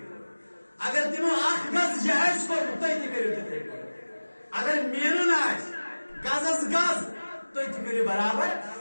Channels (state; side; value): inverted; both; correlation -1.00